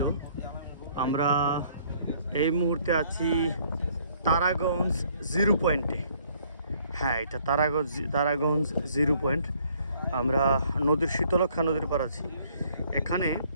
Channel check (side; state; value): both; inverted; correlation -0.62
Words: আমরা এই মুহূর্তে আছি তারাগঞ্জ জিরো পয়েন্টে। হ্যাঁ, এটা তারাগঞ্জ জিরো পয়েন্ট। আমরা নদীর শীতলক্ষা নদীর পার আছি। এখানে